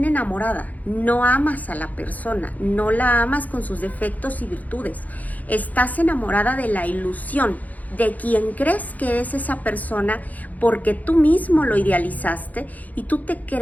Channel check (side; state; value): right; late; 0.078 ms